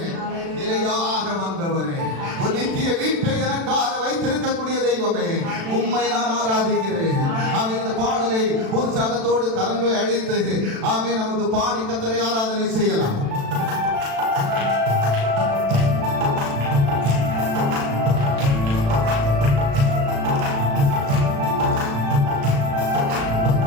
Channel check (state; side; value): late; left; 36 ms